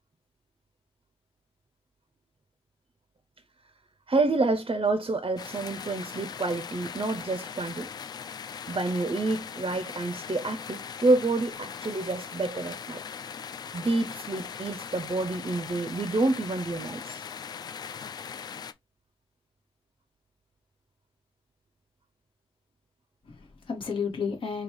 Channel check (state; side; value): normal; both; correlation 0.65